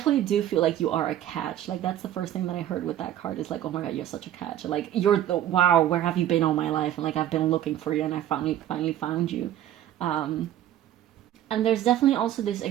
do feel like you are a catch. Like that's the first thing that I heard with that card is like, oh my god, you're such a catch. Like you're the wow, where have you been all my life? And like I've been looking for you and I finally found you. And there's definitely also this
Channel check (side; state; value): left; quieter; 12.0 dB